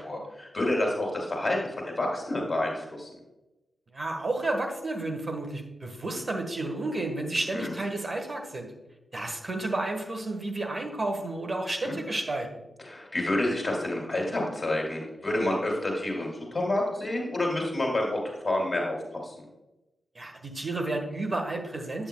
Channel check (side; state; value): both; normal; correlation 0.90